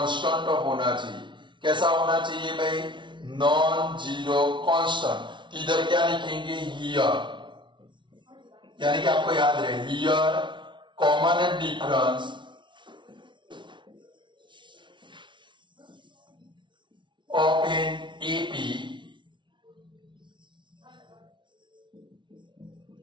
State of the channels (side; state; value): left; late; 0.24 ms